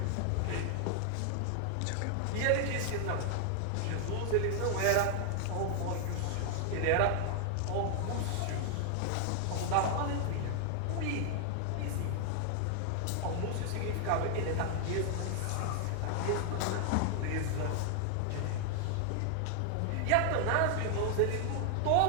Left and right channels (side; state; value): both; different; correlation 0.00